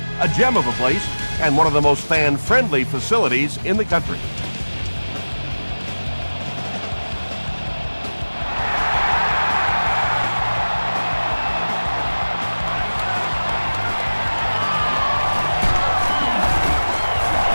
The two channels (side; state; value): both; inverted; correlation -1.00